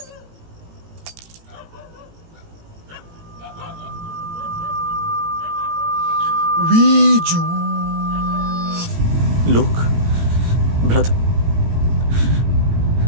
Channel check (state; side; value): late; left; 18 ms